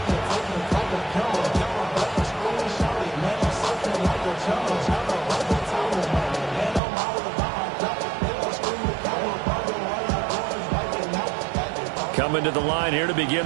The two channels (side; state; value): left; drops out; at 6.8 s